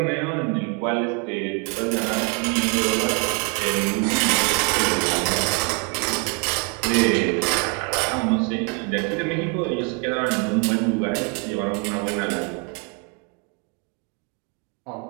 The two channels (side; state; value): left; quieter; 35.4 dB